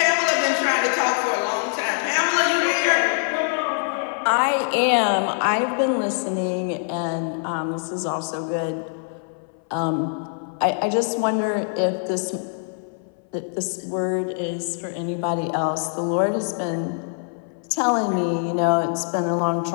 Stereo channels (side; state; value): right; silent; 60 dB below the other